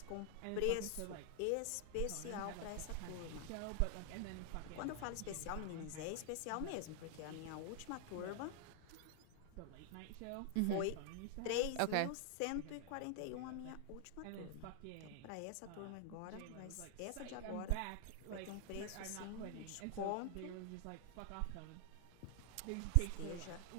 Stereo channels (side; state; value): both; different; correlation 0.00